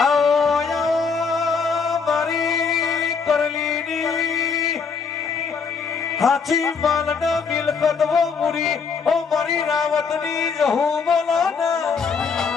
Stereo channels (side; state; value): right; quieter; 5.6 dB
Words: हाथी मालन मिलकत वो मुरी ओ मरी रावतनी जहू बोलाना